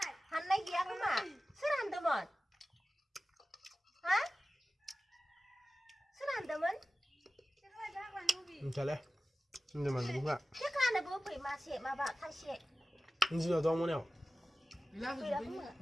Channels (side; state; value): both; normal; correlation 0.95